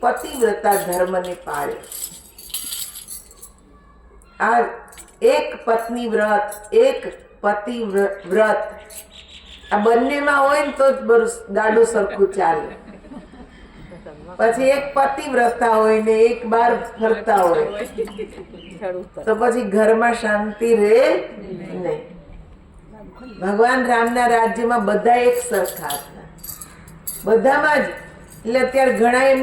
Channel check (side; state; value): both; identical; correlation 1.00